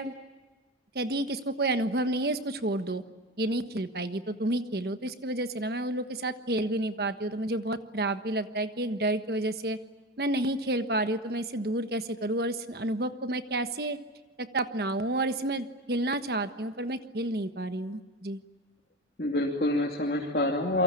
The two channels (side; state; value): both; normal; correlation 0.27